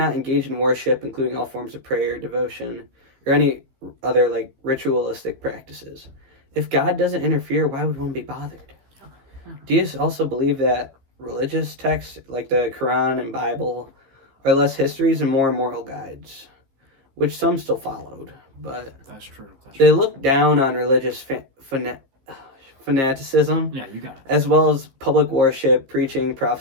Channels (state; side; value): late; left; 15 ms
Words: engage in worship, including all forms of prayer, devotion, or any other ritualistic practices. If God doesn't interfere, why would one be bothered? Deists also believe that religious texts like the Quran and Bible are less histories and more moral guides, which some still followed, but That's true. they look down on religious fanaticism, Yeah, you got it. as well as public worship, preaching,